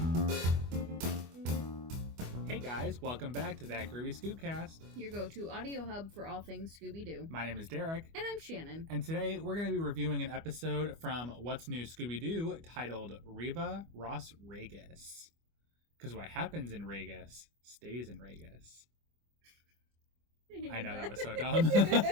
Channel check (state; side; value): late; left; 25 ms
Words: Hey guys, welcome back to That Groovy Scoobcast. Your go-to audio hub for all things Scooby-Doo. My name is Derek. And I'm Shannon. And today we're going to be reviewing an episode from What's New Scooby-Doo titled Riva Ras Regas. Because what happens in Regas stays in Regas. I know that was so dumb.